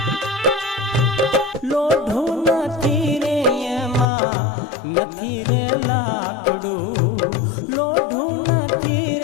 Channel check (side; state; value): right; drops out; at 4.0 s